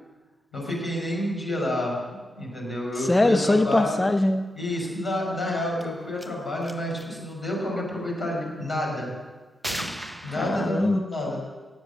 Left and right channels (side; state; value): both; normal; correlation 0.88